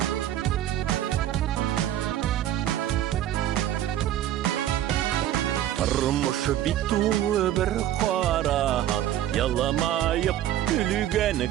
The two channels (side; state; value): left; quieter; 12.1 dB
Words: Тормыш бит тулы бер кара, яламайып күлгән